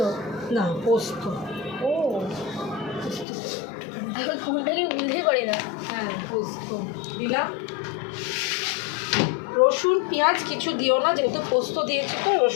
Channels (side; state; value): right; drops out; at 3.2 s